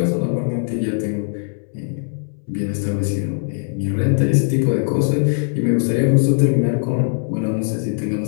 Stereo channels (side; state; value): right; silent; 66 dB below the other